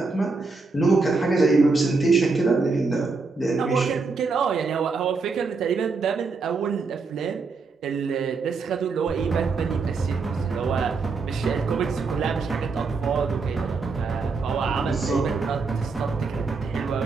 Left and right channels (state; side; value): quieter; left; 4.3 dB